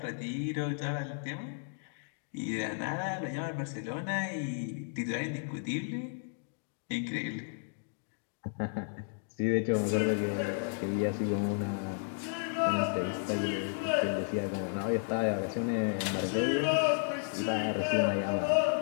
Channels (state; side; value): silent; right; digital silence